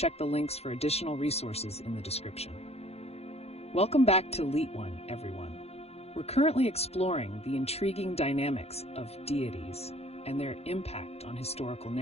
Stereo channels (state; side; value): late; right; 0.30 ms